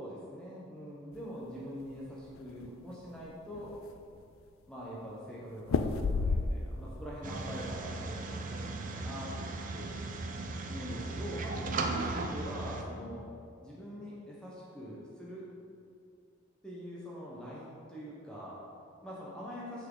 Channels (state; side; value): normal; both; correlation 0.52